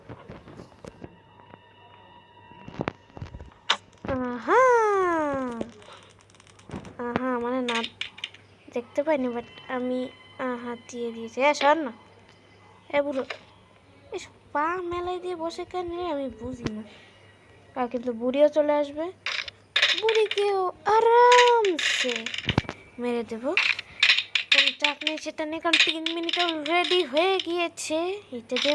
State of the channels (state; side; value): identical; both; correlation 1.00